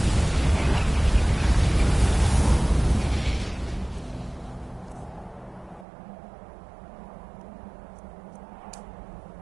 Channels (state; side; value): drops out; left; at 5.9 s